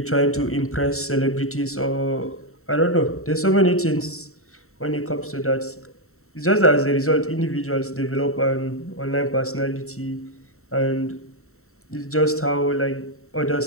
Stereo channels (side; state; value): right; late; 0.63 ms